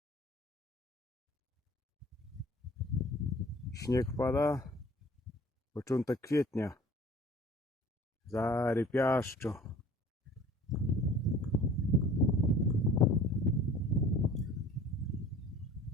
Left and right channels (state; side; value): normal; both; correlation 0.47